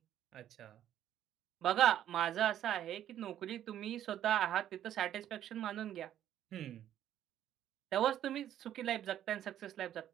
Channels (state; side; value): quieter; left; 11.2 dB